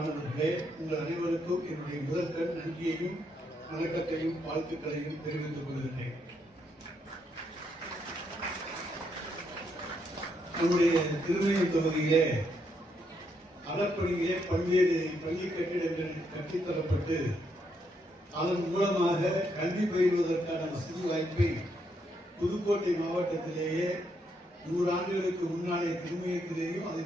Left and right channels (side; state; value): both; normal; correlation 0.76